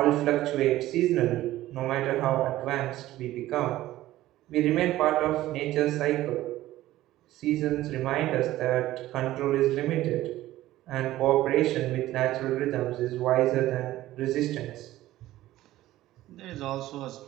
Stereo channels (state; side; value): quieter; left; 15.3 dB